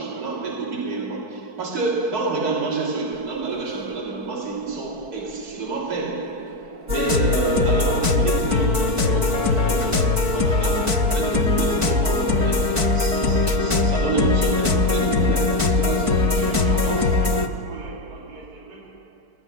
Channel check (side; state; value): left; late; 4.6 ms